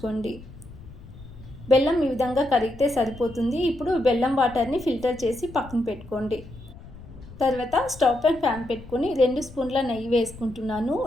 బెల్లం ఈ విధంగా కరిగితే సరిపోతుంది. ఇప్పుడు బెల్లం వాటర్ని ఫిల్టర్ చేసి పక్కన పెట్టుకోండి. తర్వాత స్టవ్ పైన ప్యాన్ పెట్టుకొని 2 స్పూన్ల నెయ్యి వేసుకుంటున్నాను.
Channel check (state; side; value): noise; left; rumble, 17 dB below the sound